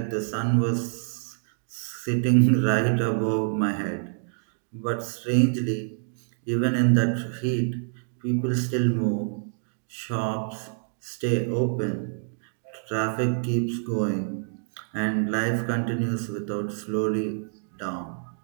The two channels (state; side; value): silent; left; digital silence